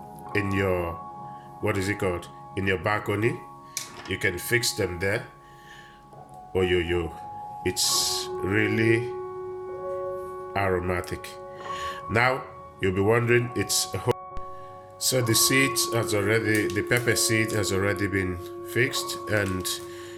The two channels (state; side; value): identical; both; correlation 1.00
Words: in your, what is it called, in your balcony. You can fix them there. Oh, it's really aromatic. Now you'll be wondering, so the seeds has already, the pepper seed has already been fixed, and